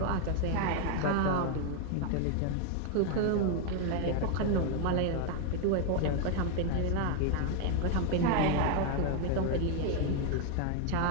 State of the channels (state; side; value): different; both; correlation 0.01